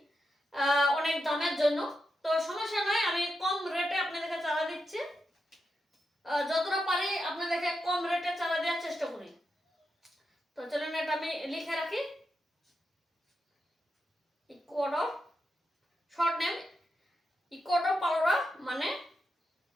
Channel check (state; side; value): normal; both; correlation 0.86